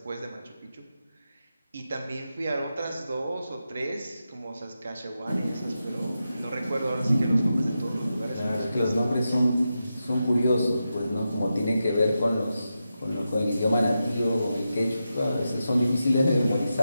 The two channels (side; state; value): both; inverted; correlation -0.89